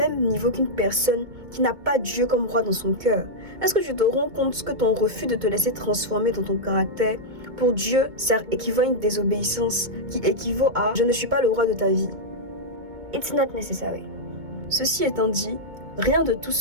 niveau qu'une personne qui n'a pas Dieu comme roi dans son cœur? Est-ce que tu te rends compte que ton refus de te laisser transformer dans ton caractère, pour Dieu, ça équivaut à une désobéissance qui équivaut à « je ne suis pas le roi de ta vie ». It's not necessary. Ceci étant dit, rien de tout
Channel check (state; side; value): late; left; 2.2 ms